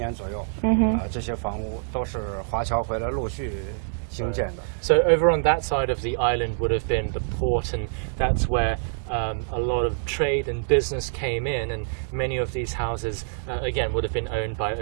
左右这些房屋都是华侨回来陆续兴建的。So over on that side of the island would have been the port, and that's where a lot of trade and business came in, and many of these houses, again, would have been owned by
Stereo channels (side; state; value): left; silent; digital silence